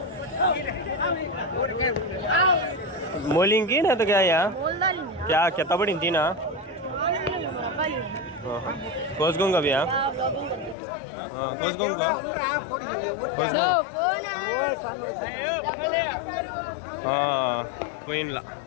मोलिंग की ना तो क्या यार क्या कितना बड़ी थी ना कोसगोंगा भैया हाँ कोसगोंगा పోయినలా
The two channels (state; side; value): drops out; right; at 10.8 s